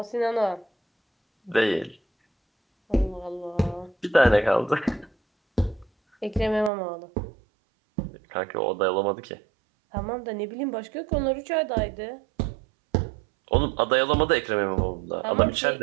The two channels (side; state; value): left; drops out; at 6.7 s